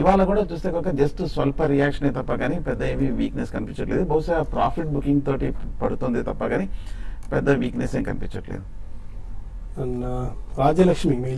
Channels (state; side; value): identical; both; correlation 1.00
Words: ఇవాళ కూడా చూస్తే కనుక జస్ట్ స్వల్ప రియాక్షన్ తప్ప కానీ పెద్ద ఏమీ వీక్నెస్ కనిపించట్లేదు. బహుశా ప్రాఫిట్ బుకింగ్ తోటి పడుతుంది తప్ప కానీ పెద్ద వీక్నెస్ ఏం కనిపించట్లేదు. రాజ్యలక్ష్మి